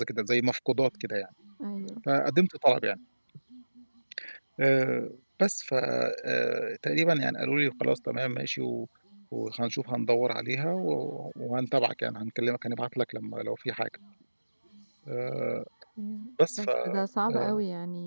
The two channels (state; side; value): inverted; both; correlation -1.00